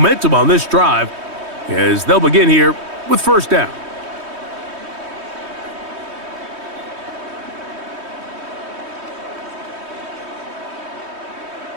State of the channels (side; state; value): left; late; 3.2 ms